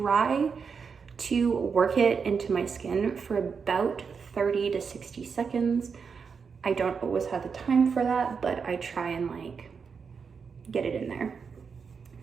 to work it into my skin for about 30 to 60 seconds. I don't always have the time for that, but I try and like get it in there.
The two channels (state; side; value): quieter; left; 5.8 dB